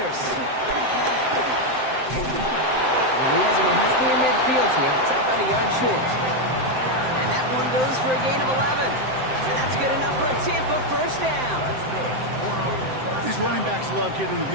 And he has him right near midfield here. It's about a yard short. And that one goes for a gain of 11. And that's good enough for a Tampa 1st down. These running backs love getting into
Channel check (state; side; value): late; left; 7.7 ms